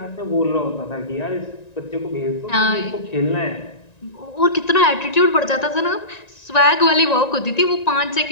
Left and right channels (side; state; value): right; late; 1.9 ms